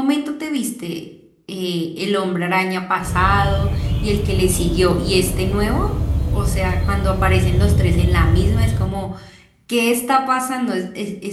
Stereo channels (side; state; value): both; identical; correlation 1.00